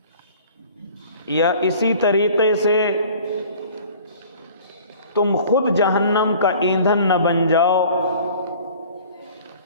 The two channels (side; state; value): both; inverted; correlation -0.48